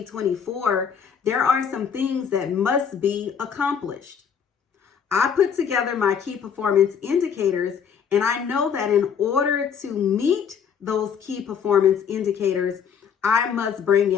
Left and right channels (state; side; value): quieter; right; 7.3 dB